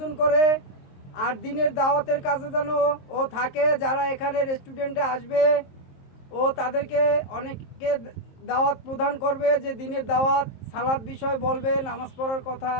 করে আর দিনের দাওয়াতের কাজে যেন ও থাকে। যারা এখানে রেস্টুরেন্টে আসবে ও তাদেরকে অনেককে দাওয়াত প্রদান করবে, যে দিনের দাওয়াত, সালাদ বিষয় বলবে, নামাজ পড়ার কথা।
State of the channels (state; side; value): late; right; 23 ms